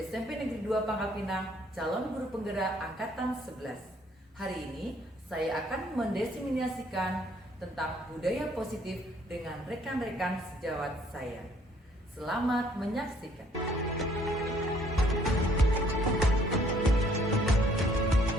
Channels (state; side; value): normal; both; correlation 0.63